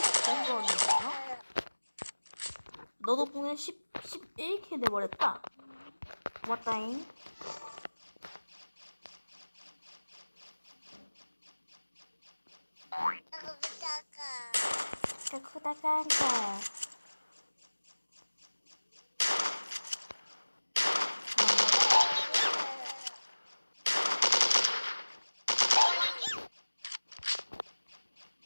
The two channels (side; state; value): both; inverted; correlation -1.00